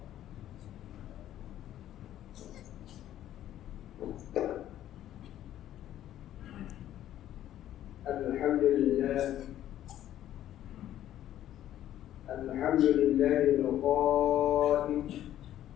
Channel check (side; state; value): right; quieter; 12.2 dB